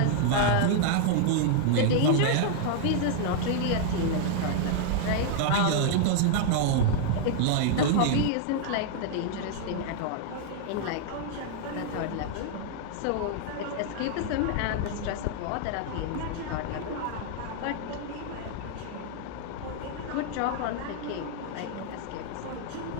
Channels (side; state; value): both; different; correlation 0.00